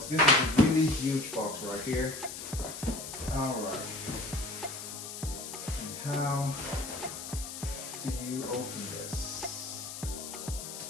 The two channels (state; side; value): noise; left; hiss, 9 dB below the sound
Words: is a really huge box right here. Alright. And how do you open this?